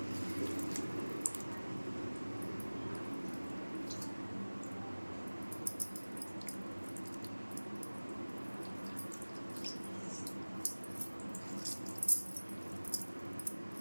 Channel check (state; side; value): inverted; both; correlation -1.00